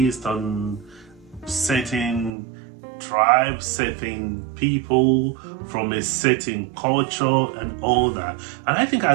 on certain tribes, certain people from a certain culture and all that. And I think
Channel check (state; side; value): drops out; left; at 2.3 s